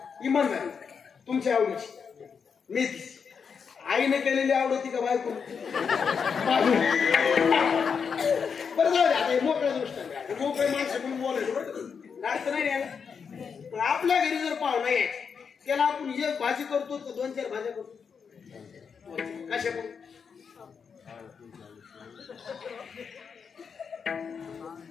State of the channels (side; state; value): right; quieter; 6.2 dB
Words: इमानदारी तुमची आवडीची मेथी आईने केलेली आवडती का बायको? बरं जाऊ दे आता मोकळ्या दृष्टाने मोकळे माणसं म्हणून बोलायचं अर्थ नाही यायला. पण आपल्या घरी जर पाहुणा यायचं त्याला आपण एक भाजी करतो का 2-4 भाज्या करतो? कशा करू?